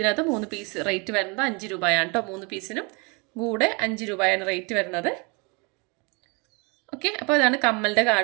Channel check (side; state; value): left; quieter; 30.3 dB